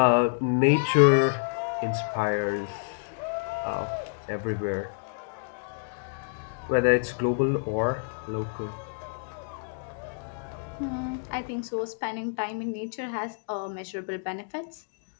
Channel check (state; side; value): silent; right; digital silence